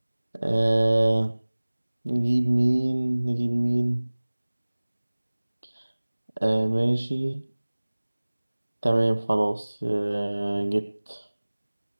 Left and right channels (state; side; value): inverted; both; correlation -1.00